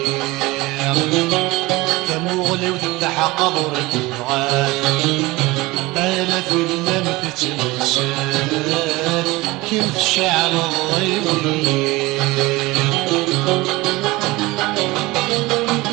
كمغلي وتفتح قبر تبغات انا في اللم تتمشات كيف شعر الضيوي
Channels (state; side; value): quieter; left; 21.1 dB